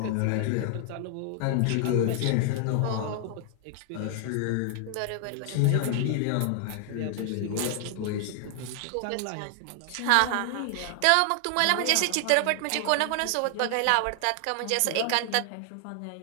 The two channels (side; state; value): both; different; correlation 0.00